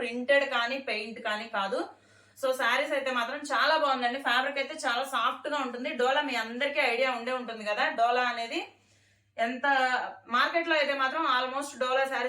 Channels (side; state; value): both; identical; correlation 1.00